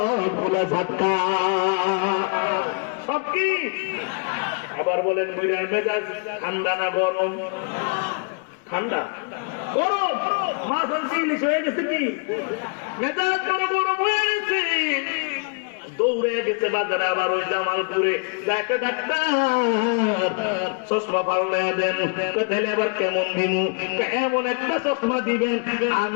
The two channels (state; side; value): quieter; right; 35.8 dB